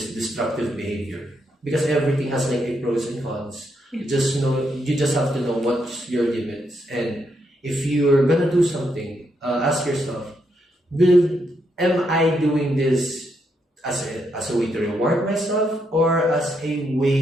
destructive behavior. Because everything has like a pros and cons. You just have to know what's your limits, and if you're gonna do something, ask yourself, am I doing this as a way to reward myself or as a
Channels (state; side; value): normal; both; correlation 0.79